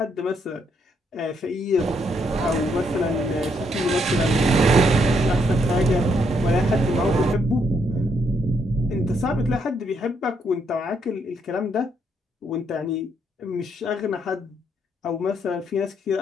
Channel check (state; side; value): normal; both; correlation 0.74